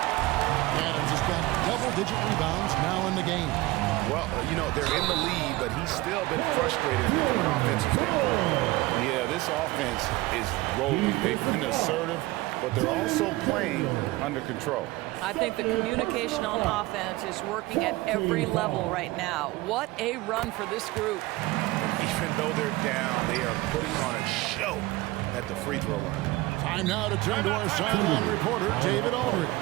Adams has got double-digit rebounds now in the game. Well, you know, they're in the lead, but he's still been frustrated from an offensive standpoint. Yeah, this offense is rolling. They've been assertive, but they're also playing under control. I think the communication on offense is working at every level right now. What a run for this group. Even though they're down, they are putting on a show at the free throw line. Time now to turn to our sideline reporter, David Aldridge.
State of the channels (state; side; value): quieter; left; 19.7 dB